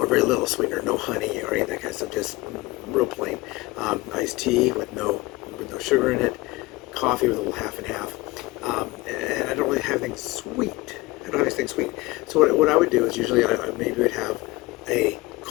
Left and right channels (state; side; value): quieter; right; 21.1 dB